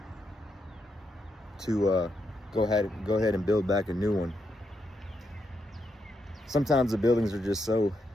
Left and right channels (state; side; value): normal; both; correlation 0.81